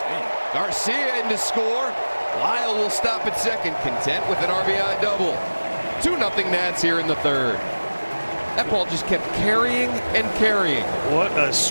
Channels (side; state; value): both; inverted; correlation -1.00